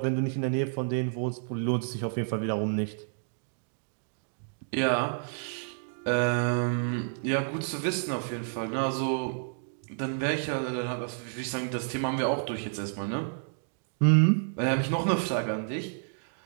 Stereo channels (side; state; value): left; silent; digital silence